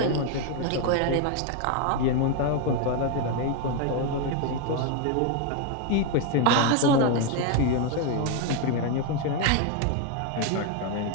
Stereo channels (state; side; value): different; both; correlation 0.01